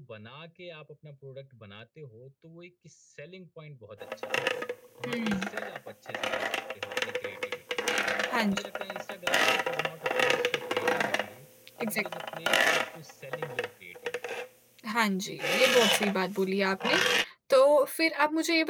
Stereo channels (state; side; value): identical; both; correlation 1.00